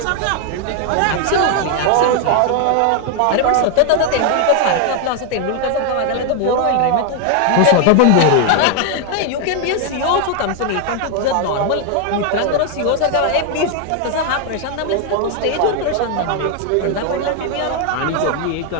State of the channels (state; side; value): different; both; correlation 0.00